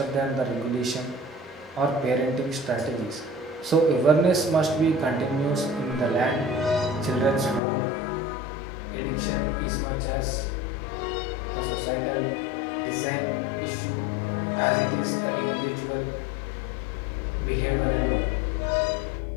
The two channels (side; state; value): right; drops out; at 7.6 s